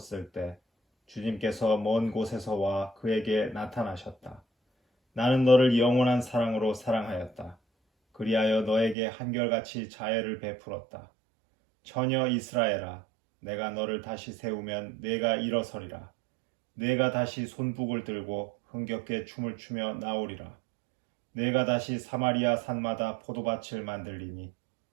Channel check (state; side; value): drops out; left; at 9.0 s